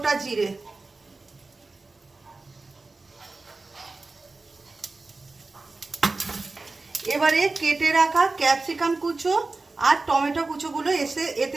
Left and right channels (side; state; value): left; quieter; 3.5 dB